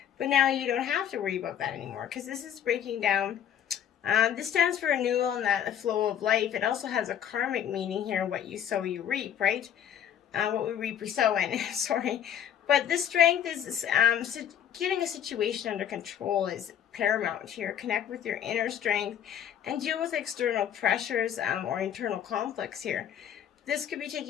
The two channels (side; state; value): right; quieter; 9.7 dB